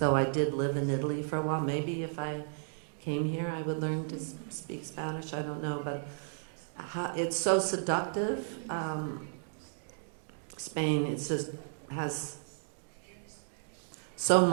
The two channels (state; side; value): silent; left; digital silence